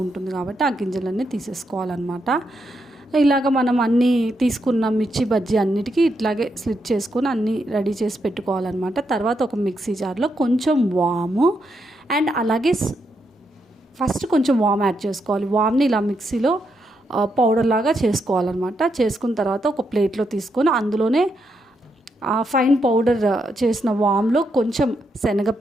ఉంటుంది కాబట్టి ఆ గింజలన్నీ తీసేసుకోవాలన్నమాట. ఇలాగ మనం అన్నీ తీసుకున్న మిర్చి బజ్జీ అన్నిటికీ ఇట్లాగే స్లిట్ చేసుకొని అన్నీ రెడీ చేసి పెట్టుకోవాలన్నమాట. తర్వాత ఒక మిక్సీ జార్లో కొంచెం వాము అండ్ అలాగే ఫస్ట్ కొంచెం వామ్ యాడ్ చేసుకోవాలి. వామ్ని ఇలా మిక్సీలో పౌడర్ లాగా చేసుకోవాలన్నమాట. చేసుకున్న తర్వాత ఒక ప్లేట్లో తీసుకొని అందులోనే ఫైన్ పౌడర్ చేసిన వామ్లో కొంచెం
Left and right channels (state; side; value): normal; both; correlation 0.81